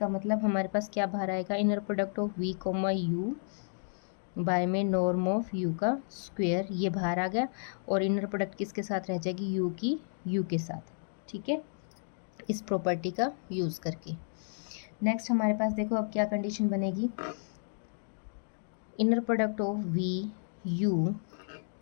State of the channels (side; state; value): right; silent; digital silence